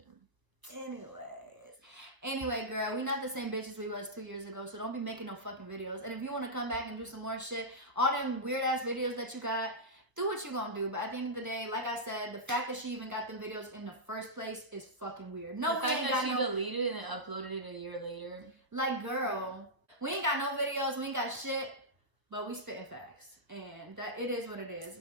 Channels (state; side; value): late; left; 1.1 ms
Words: Anyway, girl, we not the same bitches we was 2 years ago, so don't be making no fucking videos. And if you want to come back and do some more shit, all them weird ass videos that you got, do what you gonna do. But at the end of the day, like I said, the fact that she even got them videos in the first place is fucking weird. No, the fact that she deleted it and uploaded it a year later. Like, girl, we ain't got no videos, we ain't got shit, but we spitting facts, and that it is what it is.